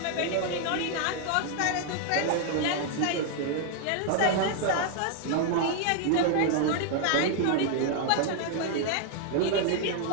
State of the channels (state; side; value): different; both; correlation 0.00